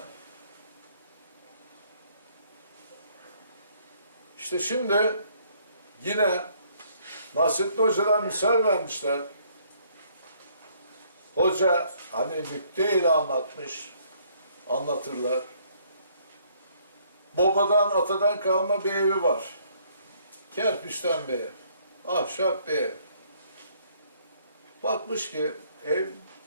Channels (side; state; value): both; inverted; correlation -0.64